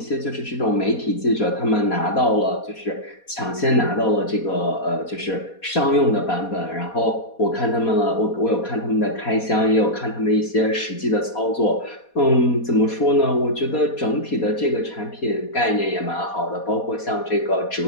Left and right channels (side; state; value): right; late; 4.2 ms